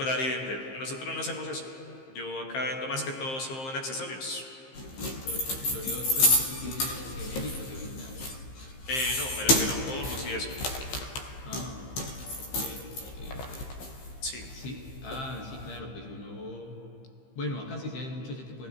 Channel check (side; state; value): right; late; 15 ms